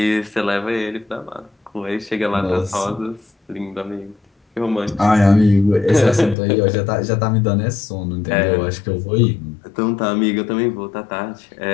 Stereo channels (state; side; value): drops out; right; at 6.4 s